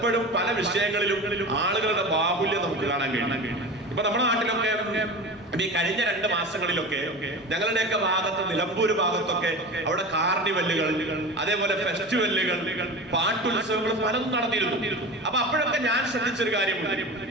പല വിഷയങ്ങളിലും ആളുകളുടെ ബാഹുല്യം നമുക്ക് കാണാൻ കഴിയും. ഇപ്പൊ നമ്മുടെ നാട്ടിലൊക്കെ ഈ കഴിഞ്ഞ 2 മാസങ്ങളിലൊക്കെ ഞങ്ങളുടെയൊക്കെ ഭാഗത്ത്, നിലമ്പൂര് ഭാഗത്തൊക്കെ അവിടെ കാർണിവല്ലുകൾ, അതേപോലെ ഫെസ്റ്റിവലുകൾ, പാട്ടുത്സവങ്ങൾ പലതും നടന്നിരുന്നു. അപ്പൊ അപ്പോഴൊക്കെ ഞാൻ ശ്രദ്ധിച്ചൊരു കാര്യമുണ്ട്.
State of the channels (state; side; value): normal; both; correlation 0.31